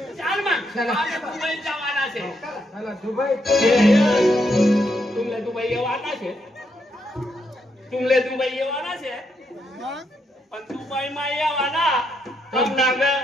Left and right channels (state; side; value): normal; both; correlation 0.78